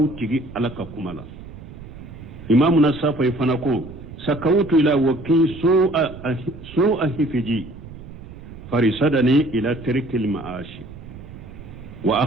تيجي على كمالا إمامنا الصافي فنقول سكوت إلى وكي سوء حفظي فرصدني إلى ترك المعاش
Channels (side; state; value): right; noise; rumble, 15 dB below the sound